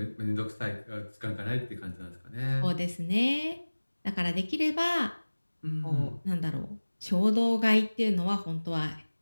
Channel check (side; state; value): both; inverted; correlation -1.00